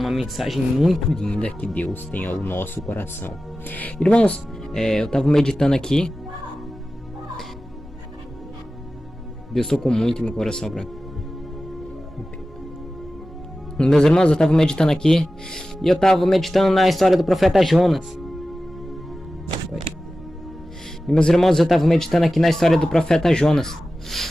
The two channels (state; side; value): normal; both; correlation 0.95